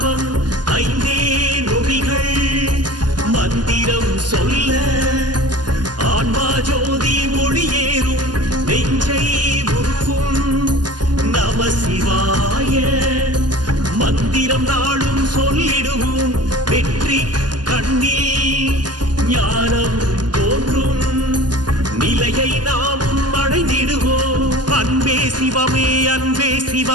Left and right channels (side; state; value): left; late; 0.70 ms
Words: ஐந்தே நொடிகள் மந்திரம் சொல்ல ஆன்மா ஜோதி ஒளியேறும் நெஞ்சை உருக்கும் நம சிவாய மந்திரம் நாளும் சொல்லிடுவோம் வெற்றி கண்ணில் ஞானம் தோன்றும் நிலையை நாமும் அடைந்திடுவோம் அன்பே சிவமே அன்பே